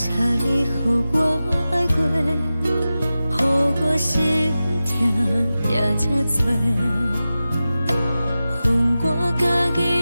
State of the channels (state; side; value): inverted; both; correlation -0.94